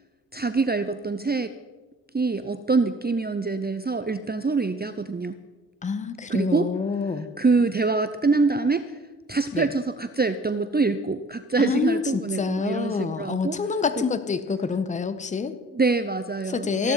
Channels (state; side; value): normal; both; correlation 0.52